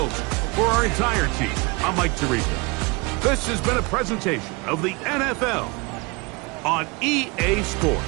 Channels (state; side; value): quieter; left; 27.4 dB